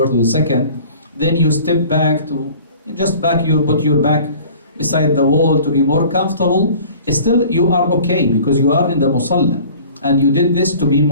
or the second, then you step back to put your back beside the wall to be more comfortable. Still, you are okay because you are in the musalla, and you did this to be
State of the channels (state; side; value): inverted; both; correlation -0.47